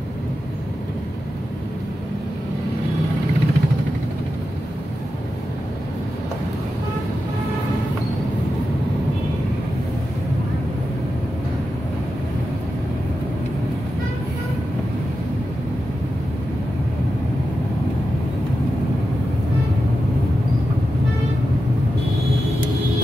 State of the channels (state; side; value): normal; both; correlation 0.90